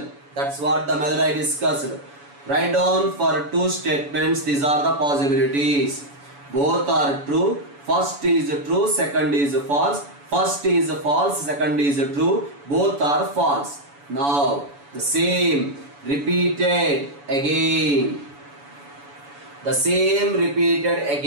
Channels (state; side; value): late; left; 7.0 ms